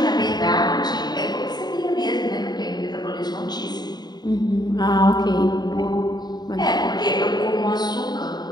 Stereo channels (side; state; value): right; late; 0.20 ms